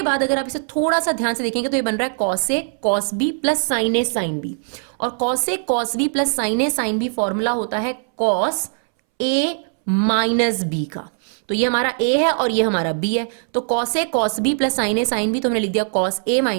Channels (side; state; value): left; silent; 64 dB below the other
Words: बाद अगर आप इसे थोड़ा सा ध्यान से देखेंगे तो ये बन रहा है cos a cos b plus sin a sin b, और cos a cos b plus sin a sin b formula होता है cos a माइनस b का। तो ये हमारा a है और ये हमारा b है, तो cos a cos b plus sin a sin b, तो हमने लिख दिया cos a